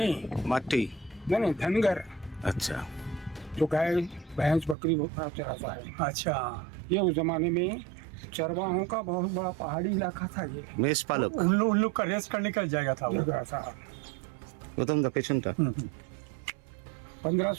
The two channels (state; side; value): drops out; left; at 4.8 s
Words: मट्टी. नहीं धनगर, अच्छा जो गाय भैंस बकरी चराता है। अच्छा ये उस जमाने में चरवाहों का बहुत बड़ा पहाड़ी इलाका था। ये मेष पालक. उन लोग का रेस्ट करने का जाएगा था वो. ऐसा প্রথম পেছনটা.